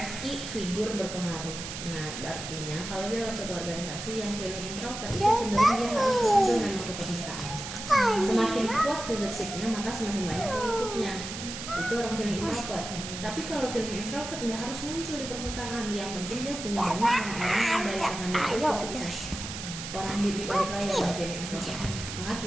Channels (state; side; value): noise; right; hiss, 8 dB below the sound